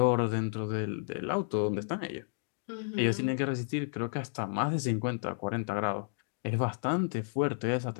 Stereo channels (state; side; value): silent; right; digital silence